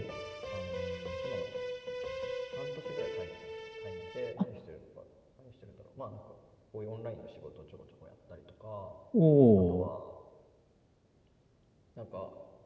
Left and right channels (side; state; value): both; identical; correlation 1.00